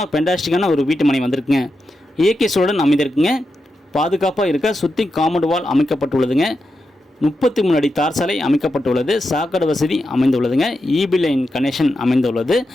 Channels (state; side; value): normal; both; correlation 0.87